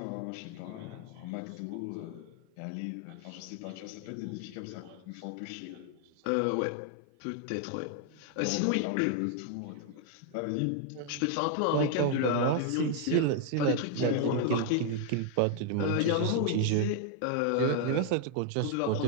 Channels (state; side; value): different; both; correlation 0.00